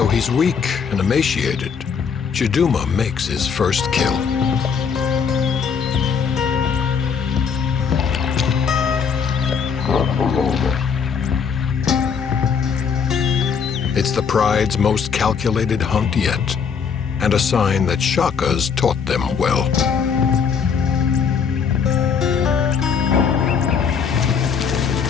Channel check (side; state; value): right; quieter; 6.4 dB